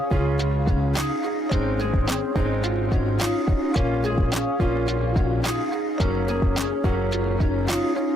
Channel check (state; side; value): normal; both; correlation 0.79